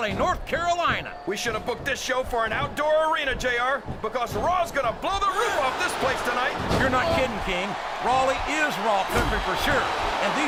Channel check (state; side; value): identical; both; correlation 1.00